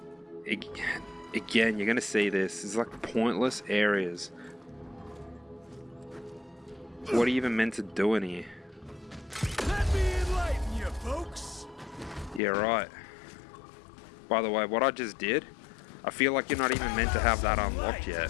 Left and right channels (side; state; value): right; drops out; at 12.4 s